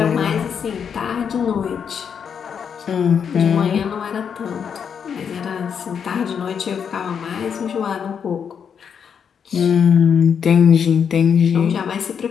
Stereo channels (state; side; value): quieter; right; 7.2 dB